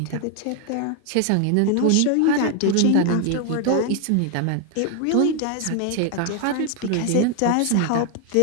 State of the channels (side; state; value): both; different; correlation 0.01